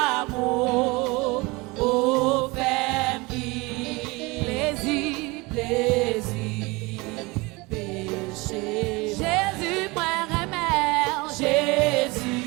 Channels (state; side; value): quieter; left; 24.6 dB